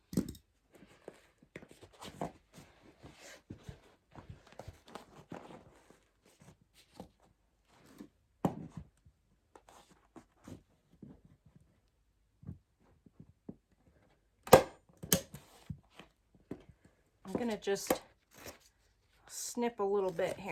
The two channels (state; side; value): identical; both; correlation 1.00